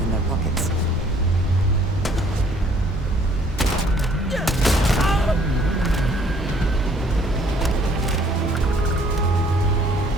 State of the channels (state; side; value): normal; both; correlation 0.60